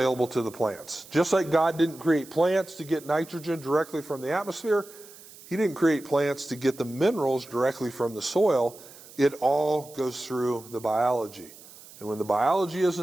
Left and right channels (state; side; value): noise; right; hiss, 20 dB below the sound